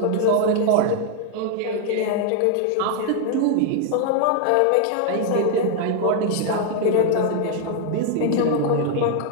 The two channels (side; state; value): both; different; correlation 0.00